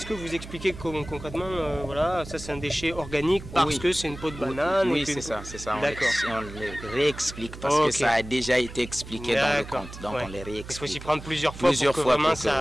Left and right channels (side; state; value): right; noise; hum, 13 dB below the sound